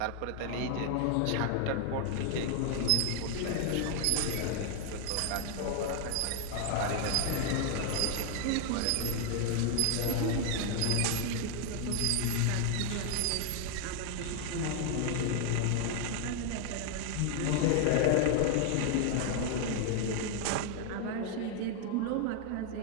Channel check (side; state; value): both; different; correlation 0.00